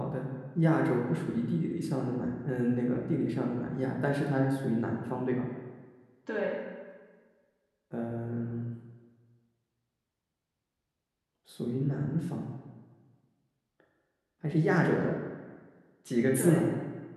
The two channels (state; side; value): identical; both; correlation 1.00